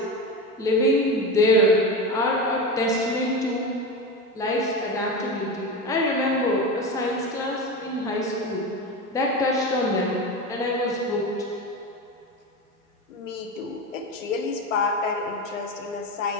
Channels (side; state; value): both; normal; correlation 0.23